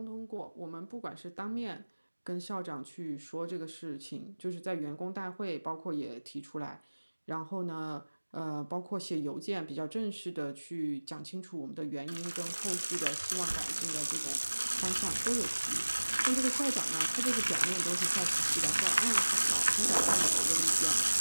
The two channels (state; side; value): inverted; both; correlation -1.00